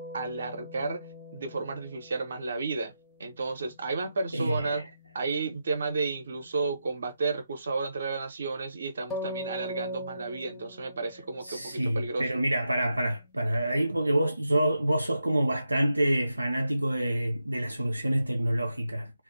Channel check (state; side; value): inverted; both; correlation -0.87